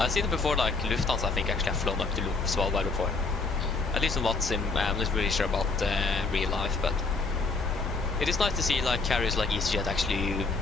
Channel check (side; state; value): right; quieter; 4.0 dB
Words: seen it before, like Lufthansa I think actually have flown up to Svalbard before. At least on Watsim, I'm not really sure about real life, but it is nice to see like carriers like EasyJet actually